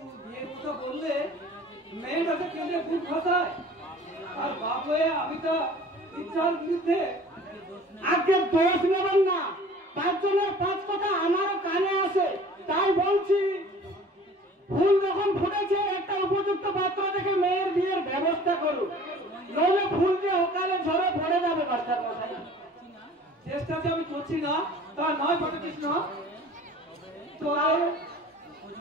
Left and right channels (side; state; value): both; normal; correlation 0.47